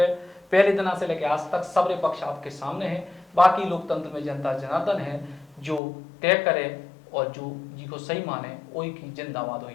पहले दिन से लेकर आज तक सबरे पक्ष आपके सामने है। बाकी लोकतंत्र में जनता जनार्दन है जो तय करे और जो जी को सही माने वही की जिंदाबाद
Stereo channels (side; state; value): right; drops out; at 5.8 s